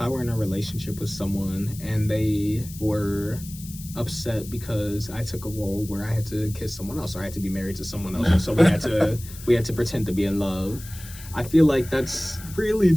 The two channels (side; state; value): left; noise; hiss, 16 dB below the sound